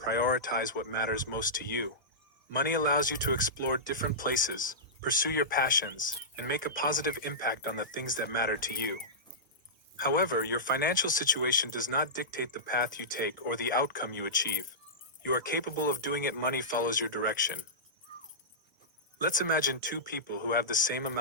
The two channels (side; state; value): both; normal; correlation -0.16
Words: what matters most to you. Money allows you to explore different places, pursue your passions, and make a positive impact on the things that matter to you. However, your financial situation does not dictate the path you take or the outcome you achieve. You are capable of doing it. Money follows your direction. Let's imagine two people who have the same